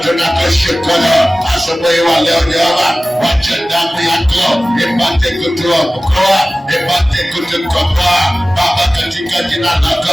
tunakushukuru asubuhi wa leo Jehova. Wacha damu yako ipate kutuokoa, ipate kutukomboa Baba, katika jina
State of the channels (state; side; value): normal; both; correlation 0.97